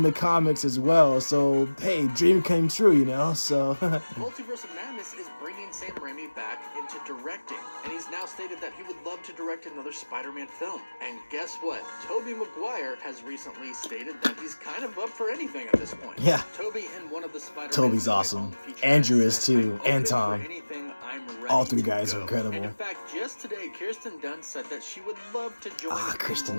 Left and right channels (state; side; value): inverted; both; correlation -1.00